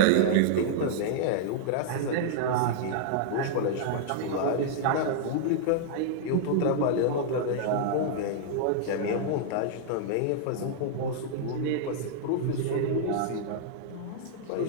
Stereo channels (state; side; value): different; both; correlation -0.01